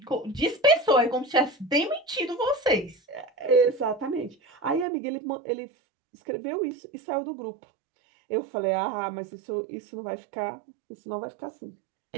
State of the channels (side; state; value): left; drops out; at 4.9 s